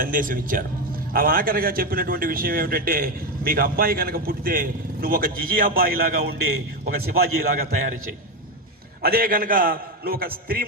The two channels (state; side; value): normal; both; correlation 0.12